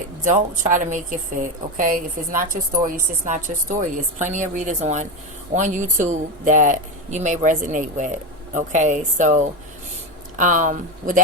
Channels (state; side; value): normal; both; correlation 0.15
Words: don't try to make it fit, okay? If it's not your story, it's just not your story. There's plenty of readers on YouTube that you may resonate with, okay? So, with